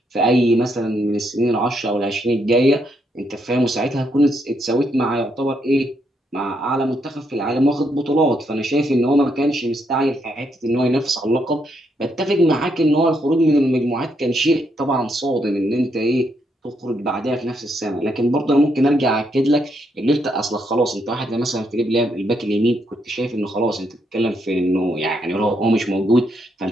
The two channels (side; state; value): both; normal; correlation 0.77